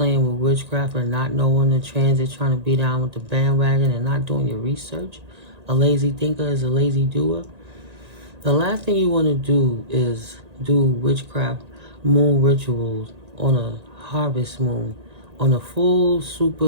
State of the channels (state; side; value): late; left; 1.9 ms